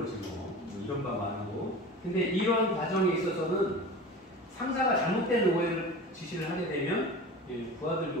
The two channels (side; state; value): both; normal; correlation 0.34